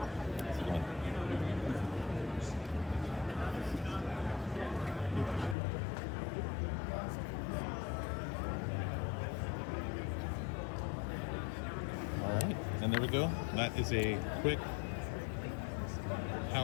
All right, and there we go. That is a quick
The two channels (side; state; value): right; drops out; at 5.6 s